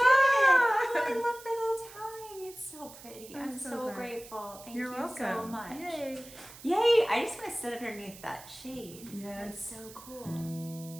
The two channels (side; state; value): right; noise; hiss, 18 dB below the sound